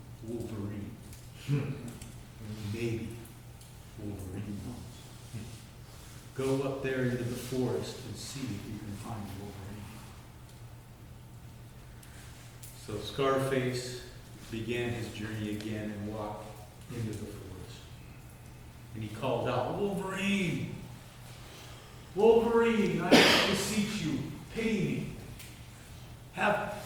Wolverine. Maybe Wolverine knows. Go up there into the forest and see if you can find Wolverine." So Scarface began his journey again and walked into the forest. And he called out, "Wolverine! Wolverine, I beseech you, pity me. Have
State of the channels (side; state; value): both; identical; correlation 1.00